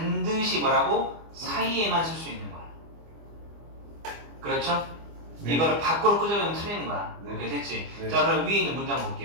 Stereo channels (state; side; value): late; left; 25 ms